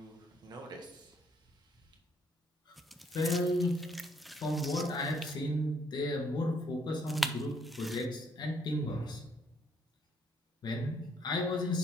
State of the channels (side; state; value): both; normal; correlation 0.68